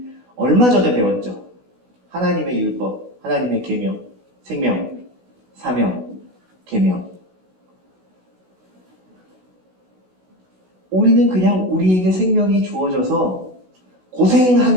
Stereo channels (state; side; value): late; left; 16 ms